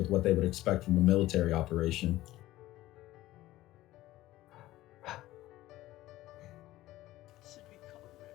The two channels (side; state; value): right; quieter; 16.2 dB